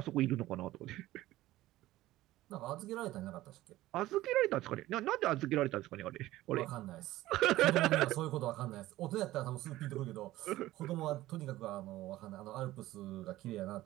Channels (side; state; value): left; quieter; 16.2 dB